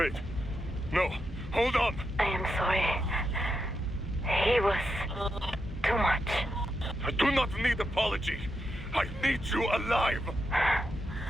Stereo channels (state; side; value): normal; both; correlation 0.85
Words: No. Hold on. I am sorry. He was too much. I do not need apology. I need you alive.